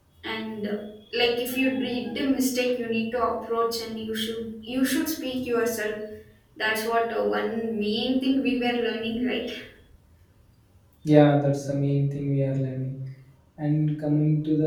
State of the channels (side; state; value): both; identical; correlation 1.00